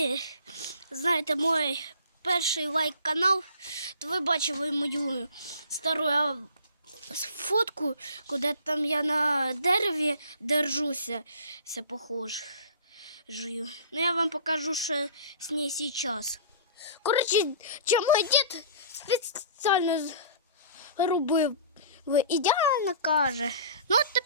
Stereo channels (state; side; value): inverted; both; correlation -0.45